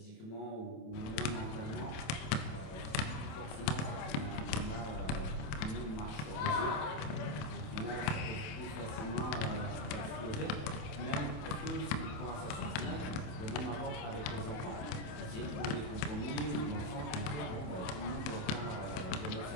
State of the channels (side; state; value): right; late; 28 ms